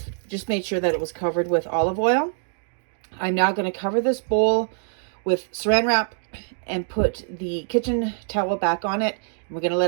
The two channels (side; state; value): left; silent; digital silence